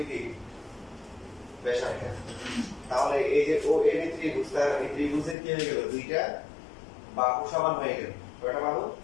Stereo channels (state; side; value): drops out; right; at 5.4 s